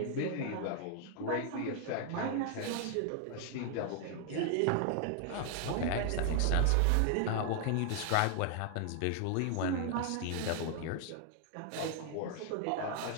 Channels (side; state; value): both; different; correlation 0.00